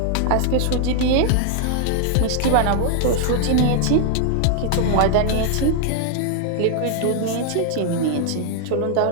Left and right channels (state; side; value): different; both; correlation 0.00